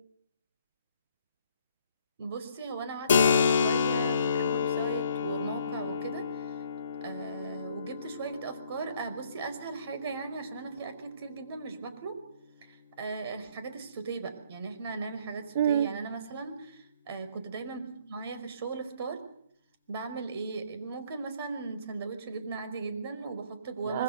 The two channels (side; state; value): both; inverted; correlation -0.64